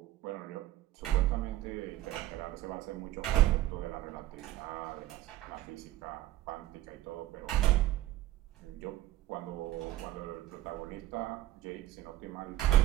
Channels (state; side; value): quieter; left; 14.4 dB